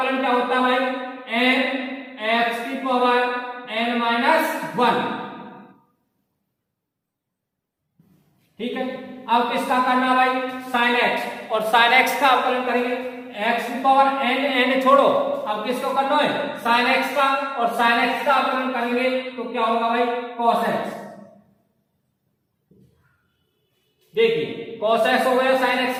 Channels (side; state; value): both; identical; correlation 1.00